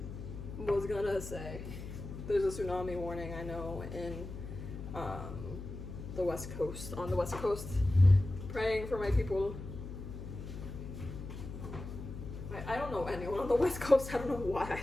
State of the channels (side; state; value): left; noise; hum, 9 dB below the sound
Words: was gonna say, there's a tsunami warning, I know, in the West Coast, on the West Coast, praying for my people. I don't know anyone on the West Coast. I don't know why I